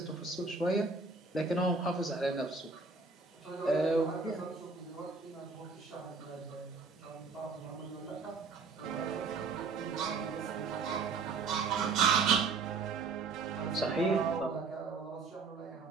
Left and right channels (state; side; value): quieter; left; 4.4 dB